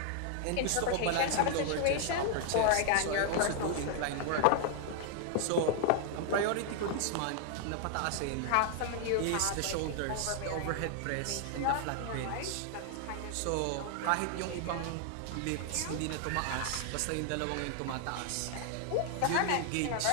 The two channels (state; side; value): different; both; correlation 0.00